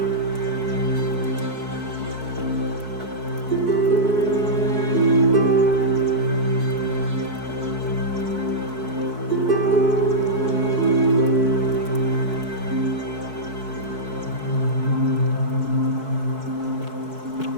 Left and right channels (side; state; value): left; late; 4.6 ms